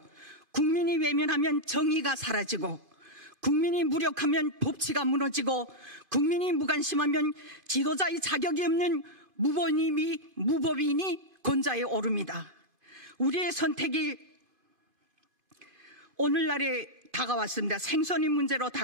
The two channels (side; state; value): left; late; 2.5 ms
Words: 국민이 외면하면 정의가 사라지고, 국민이 무력하면 법치가 무너지고, 국민이 무관심하면 지도자의 자격이 없는 무법인이 권좌에 오릅니다. 우리의 선택이 오늘날에 다가왔습니다. 생존의 문제로